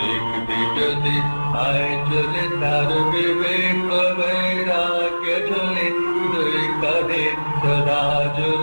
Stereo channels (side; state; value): both; inverted; correlation -1.00